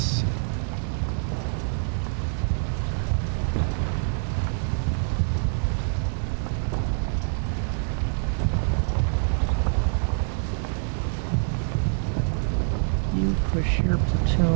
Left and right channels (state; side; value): silent; left; digital silence